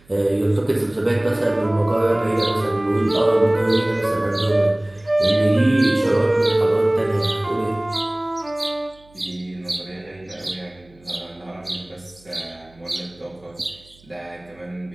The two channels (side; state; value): right; noise; hum, 28 dB below the sound